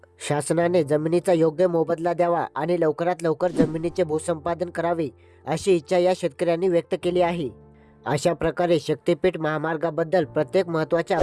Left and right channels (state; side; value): identical; both; correlation 1.00